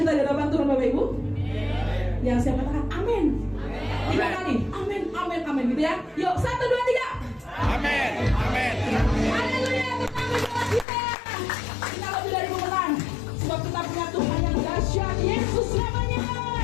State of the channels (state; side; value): drops out; right; at 10.9 s